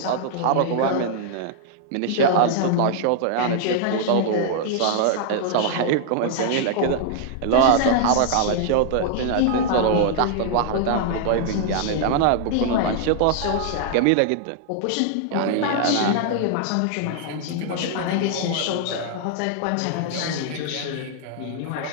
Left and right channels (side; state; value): both; different; correlation 0.00